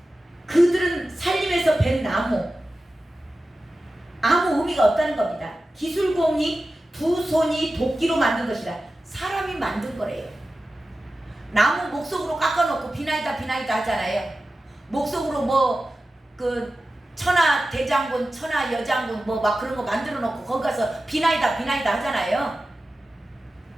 그들은 살림에서 벤 나무, 아무 의미가 없다는 겁니다. 기술공이 두 손이 도끼로 만든 것이라. 사람이 만든 거래요. 나무 목석으로 깎아놓고 비나이다 하잖아요. 목석으로 뭐 그 천하 대장군, 천하 여장군 뭐 막 그런 거 만들어 놓고 거기 가서 비나이다 하잖아요.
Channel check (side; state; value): both; normal; correlation 0.94